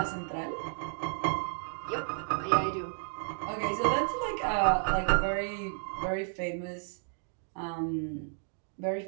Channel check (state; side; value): silent; left; digital silence